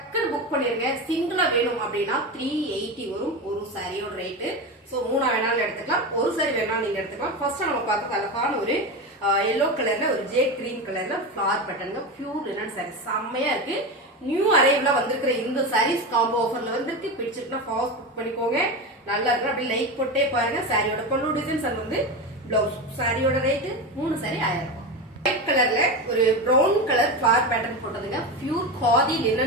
புக் பண்ணிருங்க. சிங்கிளா வேணும் அப்படின்னா 380 வரும் ஒரு சாரியோட ரேட்டு. சோ 3 வேணாலும் எடுத்துக்கலாம், ஒரு சாரி வேணாலும் நீங்க எடுத்துக்கலாம். ஃபர்ஸ்ட் நம்ம பார்க்க அழகான ஒரு yellow கலர்ல ஒரு ஜே கிரீன் கலர்ல flower pattern pure linen sorry செம்மையா இருக்கு. நியூ அரைவ்ல வந்திருக்கிற இந்த சாரீஸ் காம்போ ஆஃபர்ல வந்திருக்கு. பிடிச்சிருக்குன்னா ஃபாஸ்ட் புக் பண்ணிக்கோங்க. நல்லா இருக்கு. அப்படி லைக் போட்டே பாருங்க. சாரியோட பல்லு டிசைன்ஸ் அது வந்து பிளவுஸ். சாரியோட ரேட்டு 3 சாரி 1000 ரூபாய். ஒயிட் கலர்ல ஒரு பிரவுன் கலர் ஃபிளவர் பேட்டர்ன் போட்டதுங்க பியூர் காதி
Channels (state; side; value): normal; both; correlation 0.21